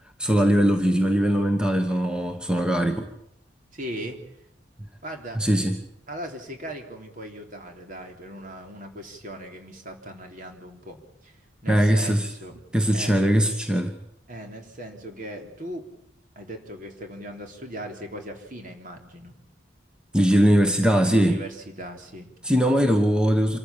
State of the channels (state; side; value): normal; both; correlation 0.87